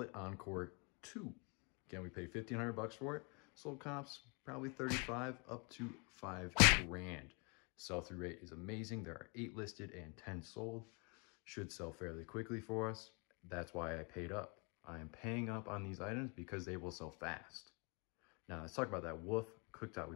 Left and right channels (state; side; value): quieter; right; 32.9 dB